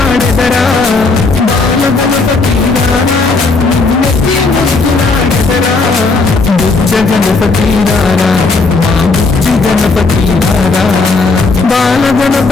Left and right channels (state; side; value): quieter; right; 3.8 dB